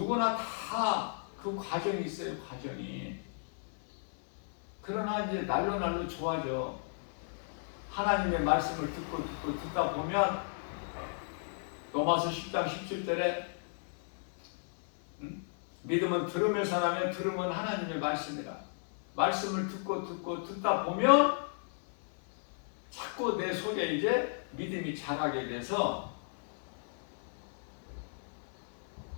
다 그 과정이 있어요, 과정이. 그러나 이제 날로 좋아져. 하나님의 말씀을 듣다 보면 로마서 10장 17절에 믿음은 들으면서 나면 들음은 하나님의 말씀이라. 말씀을 듣다 보면 자꾸 내 속에 이제 믿음이 자라게 돼서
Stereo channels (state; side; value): silent; right; 55 dB below the other